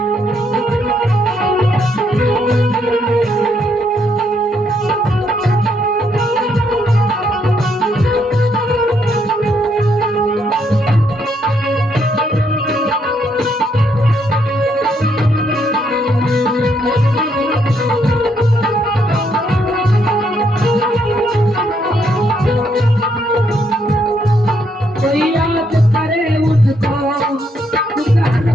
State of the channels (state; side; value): normal; both; correlation 0.74